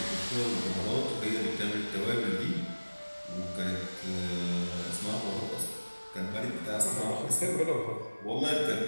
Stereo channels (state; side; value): inverted; both; correlation -1.00